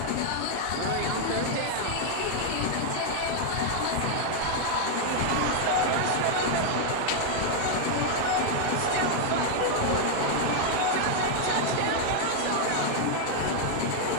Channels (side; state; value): both; different; correlation 0.00